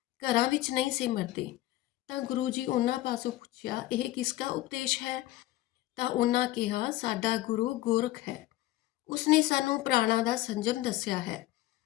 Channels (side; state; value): right; quieter; 16.5 dB